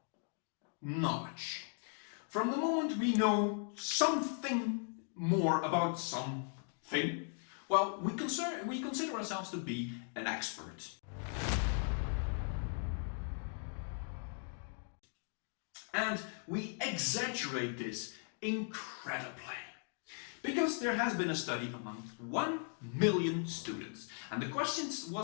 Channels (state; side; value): silent; right; 52 dB below the other